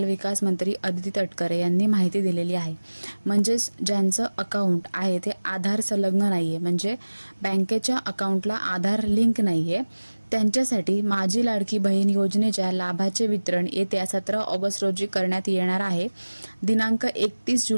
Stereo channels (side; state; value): both; inverted; correlation -1.00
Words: विकास मंत्री अदिती तटकरे यांनी माहिती दिलेली आहे। म्हणजेच ज्यांचं अकाउंट आहे ते आधार संलग्न नाहीये, म्हणजे बँकेच्या अकाउंटला आधार लिंक नाहीये, त्यांच्यासाठी माझी लाडकी बहीण योजनेच्या लाभाचे वितरण येत्या 17 ऑगस्ट रोजी करण्यात येणार आहे। दिनांक 31